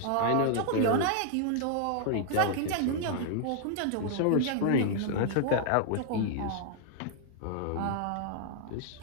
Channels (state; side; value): different; both; correlation -0.01